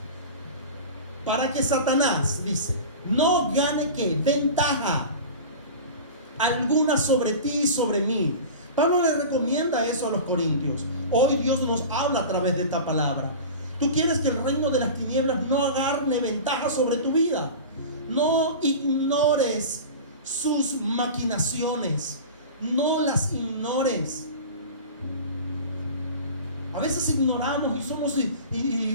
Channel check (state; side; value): inverted; both; correlation -0.33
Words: Para que Satanás, dice, no gane ¿qué? Ventaja alguna sobre ti y sobre mí. Pablo le recomienda eso a los corintios. Hoy Dios nos habla a través de esta palabra. Tú quieres que el reino de las tinieblas no agarre ventaja sobre tu vida. No ignores sus maquinaciones. No las ignores. A veces ignoramos y somos